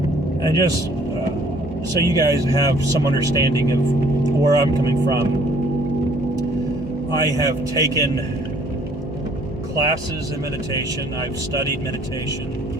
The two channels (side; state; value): right; noise; hum, 18 dB below the sound